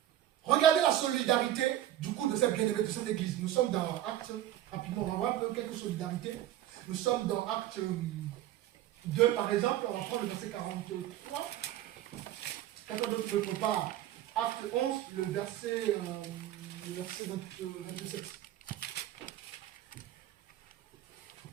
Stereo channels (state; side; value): quieter; left; 12.7 dB